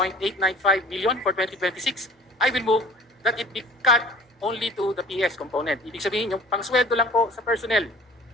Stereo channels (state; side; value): normal; both; correlation 0.47